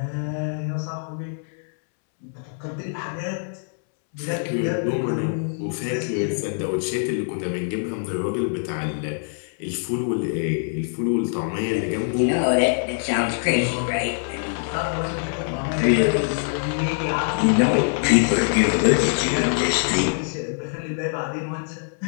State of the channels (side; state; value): right; silent; 63 dB below the other